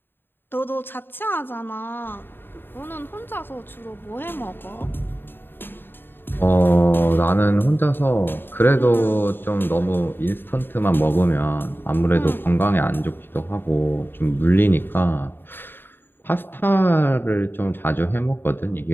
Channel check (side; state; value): right; late; 0.098 ms